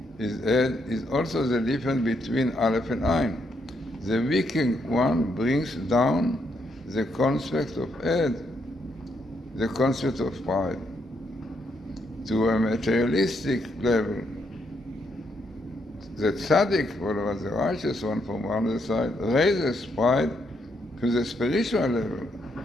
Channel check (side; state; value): both; normal; correlation 0.77